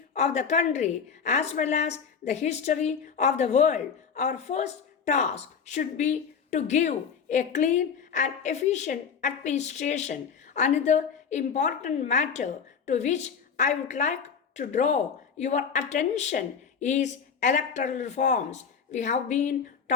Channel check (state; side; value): quieter; right; 6.5 dB